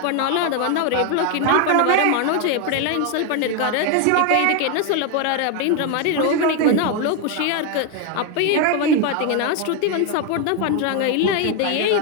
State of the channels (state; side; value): different; both; correlation 0.01